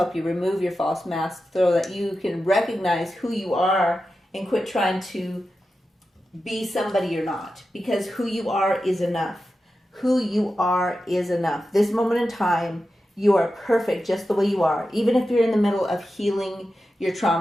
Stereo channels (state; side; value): normal; both; correlation 0.91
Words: you remove your false mask so that you can recognize who you are and quit trying to be somebody you're not, because who you are is enough. Who you are is enough. This moment in time, you are perfect just the way you are. Even if you're in the middle of healing your